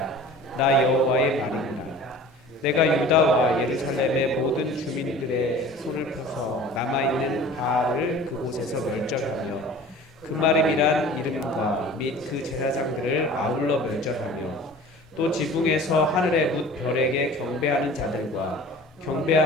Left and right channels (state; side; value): normal; both; correlation 0.43